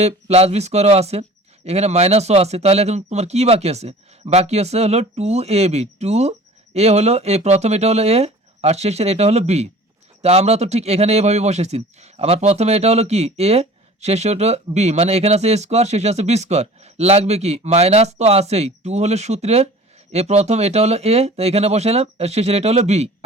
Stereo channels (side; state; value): both; normal; correlation 0.44